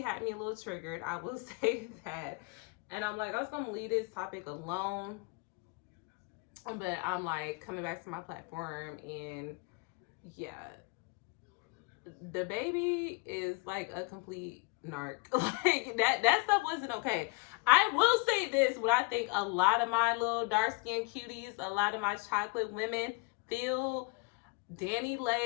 had me a little triggered. I will say that. And I'm like, I was going to leave this topic alone. But I'm like coming back to my platform, and yeah, DaBaby is like a complete narc. Like that stuff wasn't okay. I will say this: what I think a lot of my little dark skinned cuties, a lot of my chocolate women feel, Dani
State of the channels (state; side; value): quieter; right; 28.7 dB